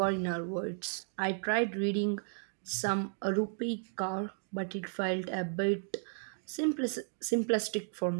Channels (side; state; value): left; silent; 55 dB below the other